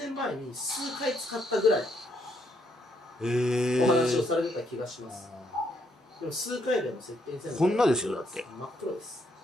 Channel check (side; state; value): both; normal; correlation 0.74